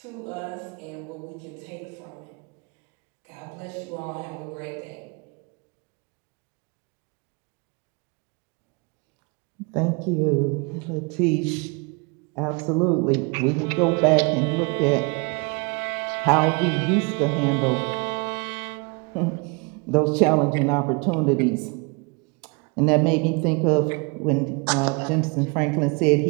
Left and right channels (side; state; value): left; quieter; 30.9 dB